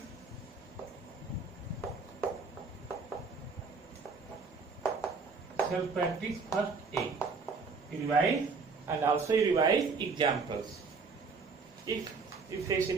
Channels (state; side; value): quieter; left; 4.7 dB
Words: first A. You revise and also you revise examples. If you face